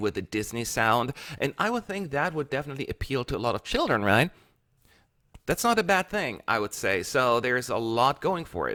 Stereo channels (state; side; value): identical; both; correlation 1.00